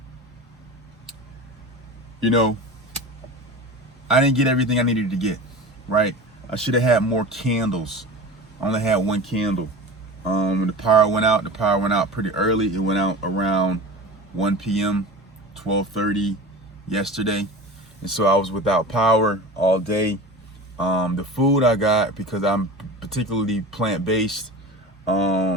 I didn't get everything I needed to get, right? I should have had more candles. I only had 1 candle. When the power went out pretty early. It went out around 1 p.m., 12:30 yesterday. And so I was without power all day. The food I got, because I'm particularly plant-based, it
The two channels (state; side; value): normal; both; correlation 0.33